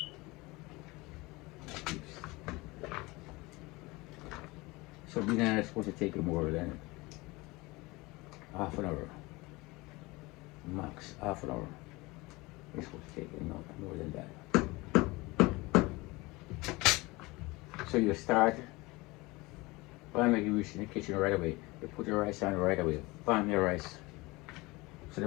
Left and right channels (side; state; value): right; quieter; 22.9 dB